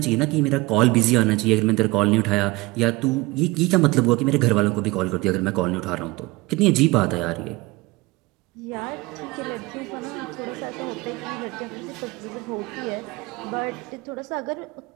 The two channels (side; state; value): left; quieter; 22.2 dB